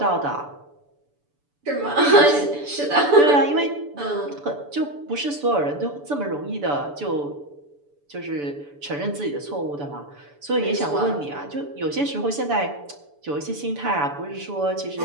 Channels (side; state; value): left; late; 6.9 ms